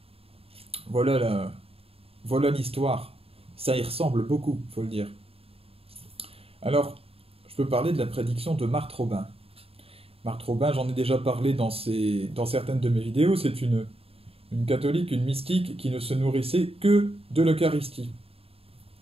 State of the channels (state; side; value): late; left; 0.28 ms